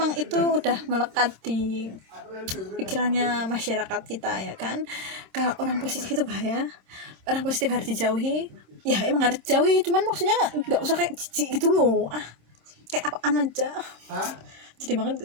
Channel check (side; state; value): left; late; 26 ms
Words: itu udah melekat di pikirannya masyarakat kita ya kan. Kalau orang positif itu bahaya, orang positif harus dijauhi, ya emang harus dijauhi, cuman maksudnya nggak usah kayak jijik gitu loh, kayak apaan aja. Jadi banget